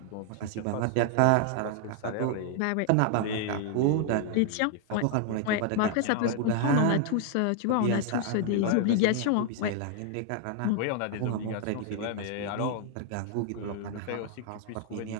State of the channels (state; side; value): different; both; correlation 0.00